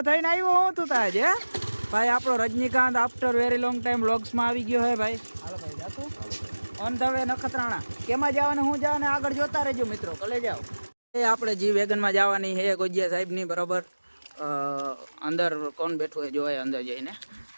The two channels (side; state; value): both; inverted; correlation -1.00